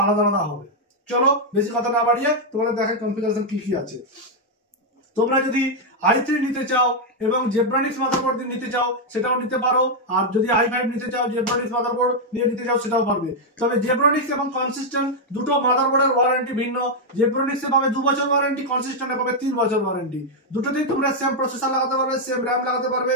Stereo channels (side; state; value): both; normal; correlation -0.01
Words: আলাদা আলাদা হবে। চলো বেশি কথা না বাড়িয়ে তোমাদের দেখাই কনফিগারেশন কি কি আছে। তোমরা যদি i3 নিতে চাও এবং জেব্রানিক্স মাদারবোর্ড দিয়ে নিতে চাও সেটাও নিতে পারো, আর যদি i5 নিতে চাও জেব্রানিক্স মাদারবোর্ড দিয়ে নিতে চাও সেটাও পারবে। তবে জেব্রানিক্স এবং কনসিস্টেন্ট দুটো মাদারবোর্ডের ওয়ারেন্টি ভিন্ন। জেব্রানিক্সে পাবে 2 বছর ওয়ারেন্টি, কনসিস্টেন্টে পাবে 3 বছর ওয়ারেন্টি। দুটোতেই তোমরা সেম প্রসেসর লাগাতে পারবে, সেম র্যাম লাগাতে পারবে,